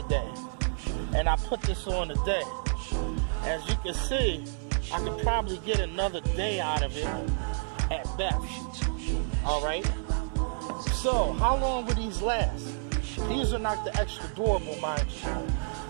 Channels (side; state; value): left; silent; digital silence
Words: And I put this on today. As you can see, I could probably get another day out of it at best. All right. So how long would these last? These are not the extra durable, mind you.